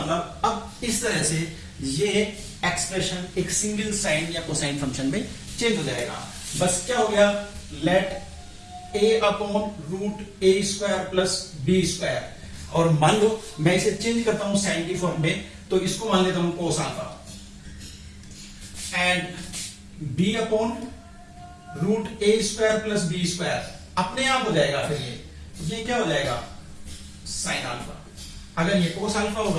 अब इस तरह से ये एक्सप्रेशन एक सिंगल साइन या कोसाइन फंक्शन में चेंज हो जाएगा. बस क्या हो गया, let a upon root a square plus b square, और मान लो मैं इसे चेंज करता हूं साइन की फॉर्म में तो इसको मान लेता हूं cos alpha and b upon root a square plus b square अपने आप हो जाएगा. फिर ये क्या हो जाएगा साइन अल्फा. अगर ये cos अल्फा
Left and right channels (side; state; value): both; identical; correlation 1.00